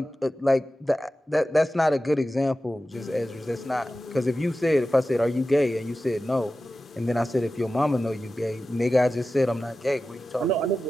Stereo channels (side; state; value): both; normal; correlation 0.93